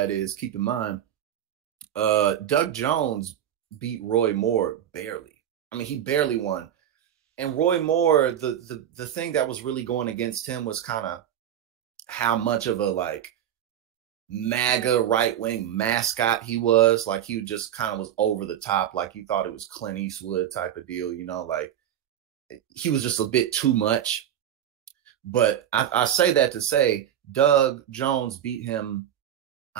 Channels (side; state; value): left; quieter; 10.4 dB